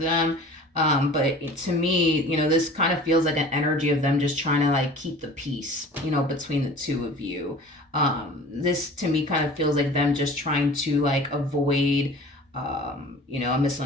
But to me, this kind of feels like an energy of them just trying to like keep the peace, between the two of you. This to me kind of feels like them just trying to like avoid a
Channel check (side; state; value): both; normal; correlation 0.43